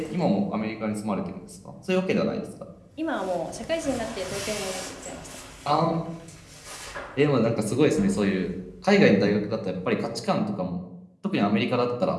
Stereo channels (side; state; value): both; identical; correlation 1.00